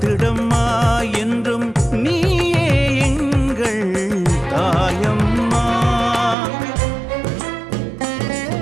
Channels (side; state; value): left; drops out; at 6.4 s